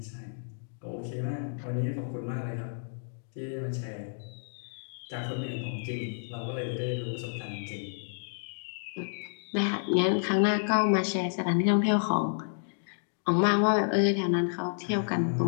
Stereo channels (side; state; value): right; silent; digital silence